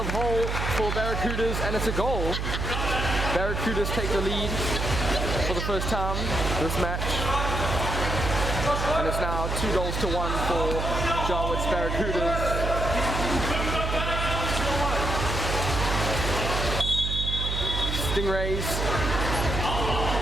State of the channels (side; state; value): right; noise; hum, 2 dB below the sound